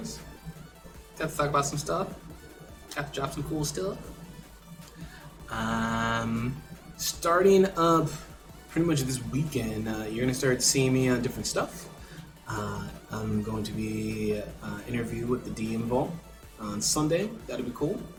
Got to talk about some stuff. Got to drop some cool stuff. Starting up pretty much this weekend, you're gonna start seeing me on different stuff. I'm going to be interview with the DM Vault on Sunday. That'll be cool.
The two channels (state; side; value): identical; both; correlation 1.00